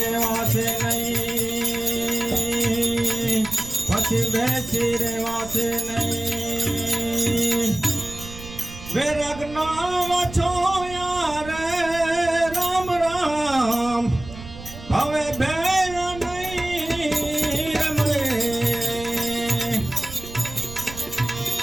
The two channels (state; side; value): noise; right; rumble, 14 dB below the sound